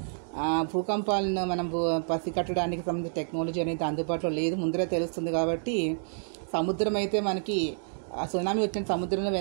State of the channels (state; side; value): silent; left; digital silence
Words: భూకంపాలను మనం పసిగట్టడానికి సంబంధించిన టెక్నాలజీ అనేది అందుబాటులో లేదు, ముందరే తెలుస్తుంది. కాబట్టి సముద్రం అయితే మనకి సునామీ వచ్చిన సముద్రంలో